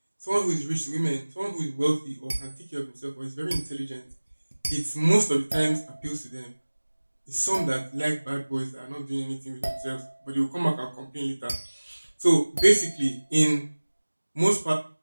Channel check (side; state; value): both; inverted; correlation -1.00